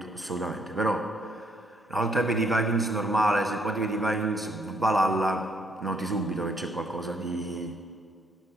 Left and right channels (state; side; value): normal; both; correlation 0.69